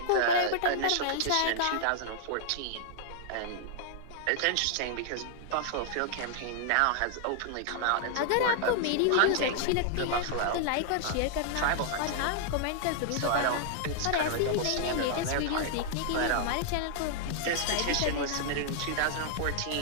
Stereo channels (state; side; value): different; both; correlation -0.01